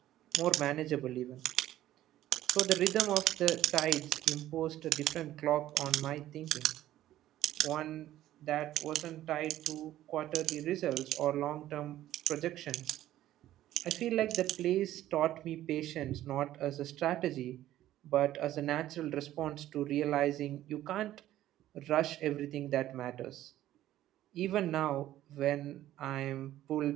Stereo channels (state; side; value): quieter; left; 13.6 dB